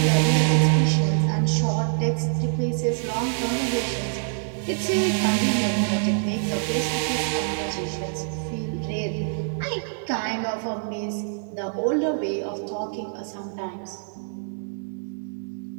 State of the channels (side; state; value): left; silent; digital silence